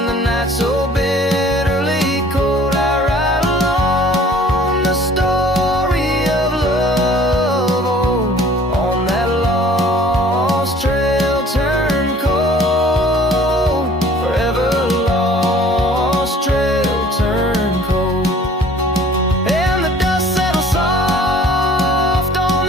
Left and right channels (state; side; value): normal; both; correlation 0.52